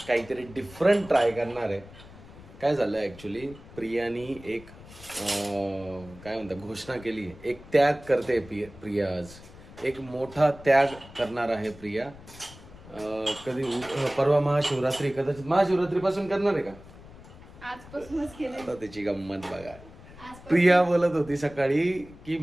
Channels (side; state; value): left; noise; rumble, 19 dB below the sound